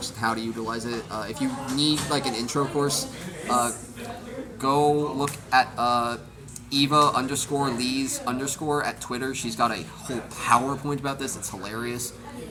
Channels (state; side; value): identical; both; correlation 1.00